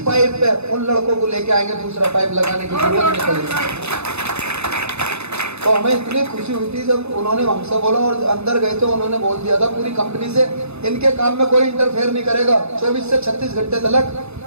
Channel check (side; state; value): left; late; 0.80 ms